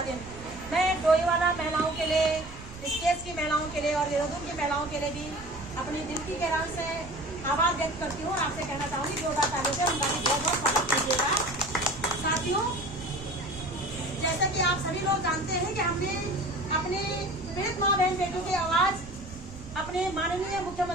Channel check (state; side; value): noise; right; rumble, 15 dB below the sound